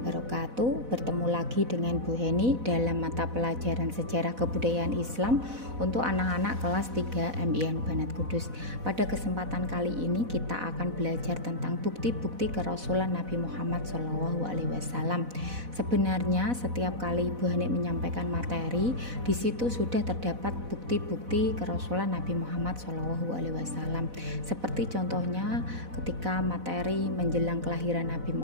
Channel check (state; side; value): late; left; 4.0 ms